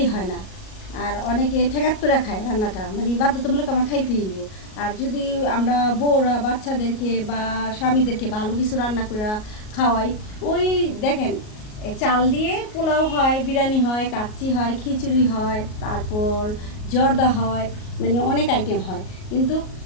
হয় না। আর অনেকে ঠেকাত করে খায় রান্নাটা, মানে বাধ্যতামূলক আমরা খাইতেই দিব। আর যদি আমরা বউরা বাচ্চাদেরকে বা স্বামীদেরকে ভালো কিছু রান্না করে খাওয়াই, ওই দেখেন চাল দিয়ে পোলাও হয়, বিরিয়ানি হয়, কাচ্চি হয়, খিচুড়ি হয়, তারপর জর্দা হয়, মানে অনেক আইটেম হয়। কিন্তু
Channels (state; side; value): late; right; 38 ms